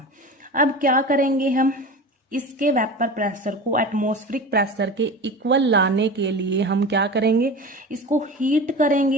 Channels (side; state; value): both; normal; correlation 0.32